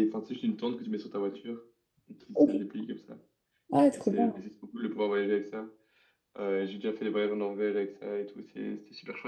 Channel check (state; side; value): identical; both; correlation 1.00